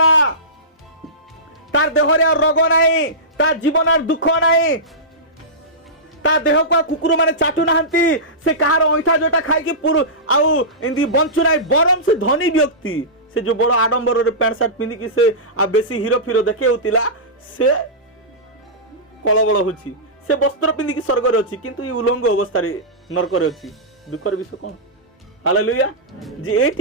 तार देह रे रोग नाही तार जीवन दुख नाही ता देह को कुकुर माने चाटू नाहंती से कहार ऐठा जोटा खाई कि पुरु आउ इंदी बंचु नाही बरम से धनी व्यक्ति से जो बड़ आडंबर रे पैंट शर्ट पिंदी कि से आ बेसी हीरो फिरो देखे होतिला से कलबल होची से वस्त्र पिंदी कि स्वर्ग रे अछि किंतु ई उलंग अवस्था रे नरक रे अछि दुखर विषय कोन हालेलुया जे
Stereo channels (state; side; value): normal; both; correlation -0.17